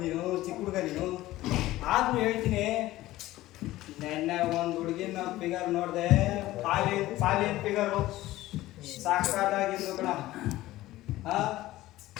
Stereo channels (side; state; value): right; quieter; 16.5 dB